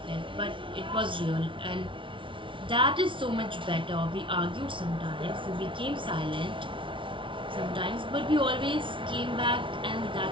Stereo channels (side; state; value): left; late; 0.25 ms